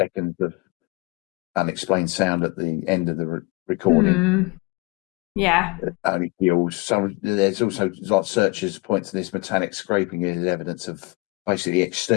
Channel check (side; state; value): right; quieter; 26.5 dB